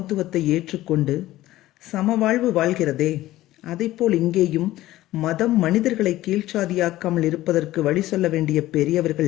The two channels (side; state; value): right; quieter; 15.7 dB